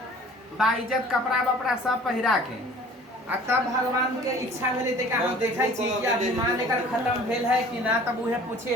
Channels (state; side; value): normal; both; correlation 0.49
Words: बाइज्जत कपड़ा वपड़ा सब पहिरा के। आ तब भगवान के इच्छा भेले ते का हम देखै छी कि अभिमान एकर खत्म भेल है कि ना। तब उहे पूछे